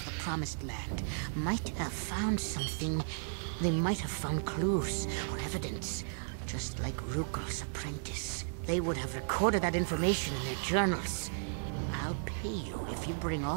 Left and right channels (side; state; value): left; silent; 55 dB below the other